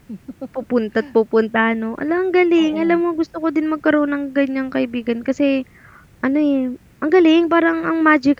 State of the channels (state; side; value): identical; both; correlation 1.00